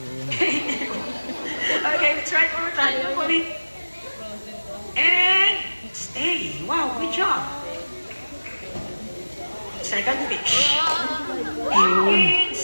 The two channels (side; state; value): both; inverted; correlation -1.00